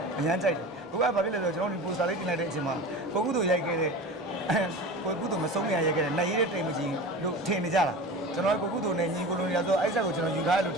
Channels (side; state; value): both; normal; correlation 0.33